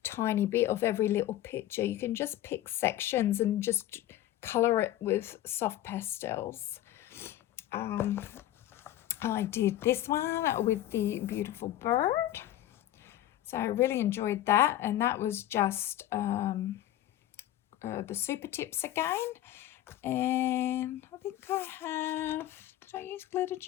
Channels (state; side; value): quieter; right; 13.5 dB